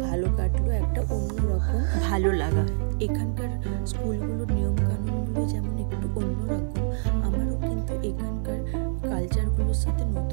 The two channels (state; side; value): silent; left; digital silence